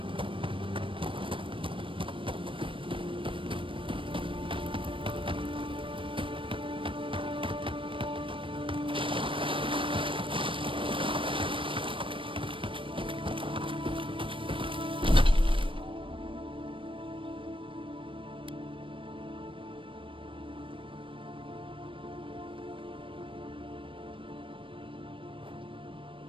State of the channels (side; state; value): left; late; 0.25 ms